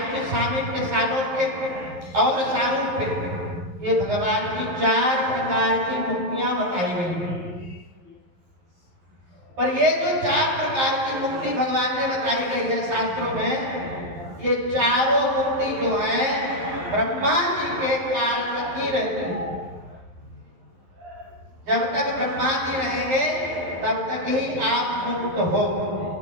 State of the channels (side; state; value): left; late; 11 ms